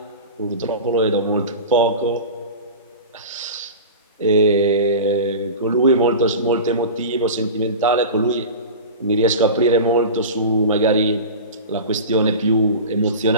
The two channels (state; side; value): inverted; both; correlation -0.31